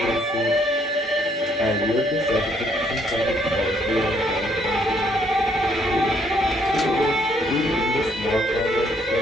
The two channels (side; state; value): both; normal; correlation 0.68